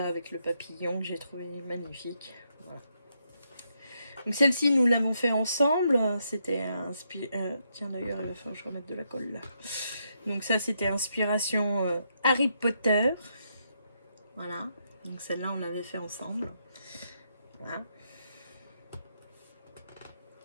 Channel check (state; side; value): inverted; both; correlation -0.78